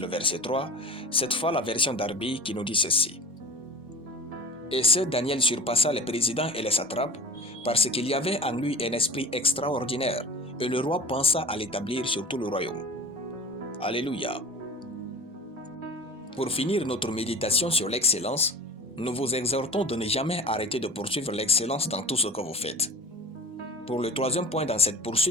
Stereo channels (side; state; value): both; normal; correlation 0.37